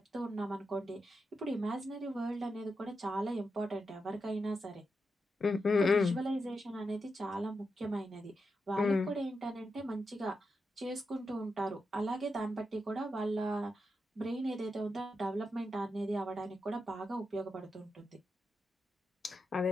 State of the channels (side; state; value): both; normal; correlation 0.87